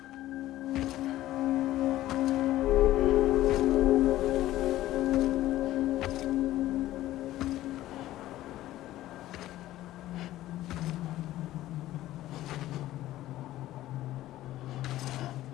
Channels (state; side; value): quieter; right; 14.9 dB